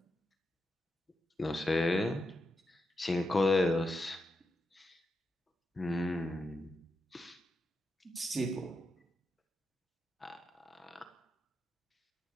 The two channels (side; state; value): both; normal; correlation 0.86